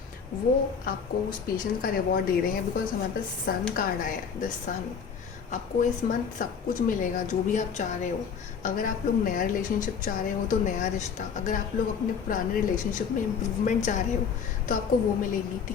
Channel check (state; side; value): quieter; right; 6.5 dB